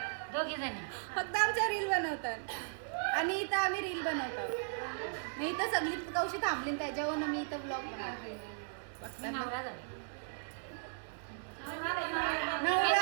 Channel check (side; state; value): left; silent; digital silence